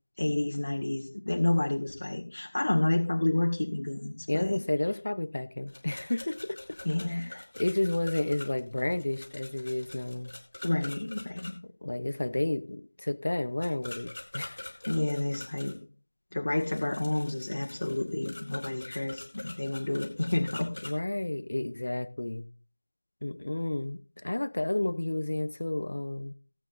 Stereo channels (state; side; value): inverted; both; correlation -1.00